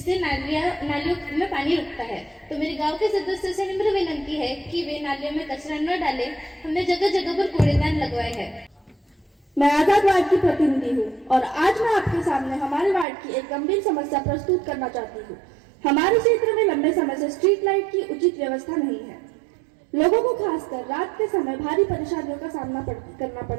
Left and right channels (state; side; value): drops out; left; at 13.1 s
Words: नालियों में पानी रुकता है। तो मेरे गांव के सदस्यों से निम्र विनती है कि वे नालियों में कचरा न डालें। हमने जगह जगह पर कूड़ेदान लगवाए हैं। मैं आजाद वार्ड की प्रतिनिधि हूँ और आज मैं आपके सामने हमारे वार्ड की एक गंभीर समस्या प्रस्तुत करना चाहती हूँ। हमारे क्षेत्र में लंबे समय से स्ट्रीट लाइट की उचित व्यवस्था नहीं है। लोगों को खासकर रात के समय भारी परेशानियों का सामना करना